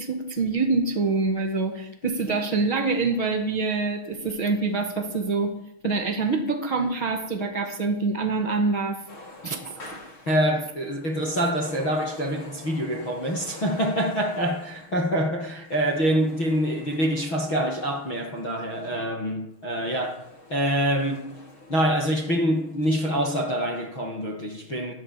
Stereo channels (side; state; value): right; late; 6.3 ms